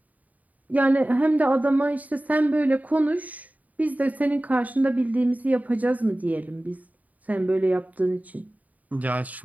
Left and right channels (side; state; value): left; late; 0.073 ms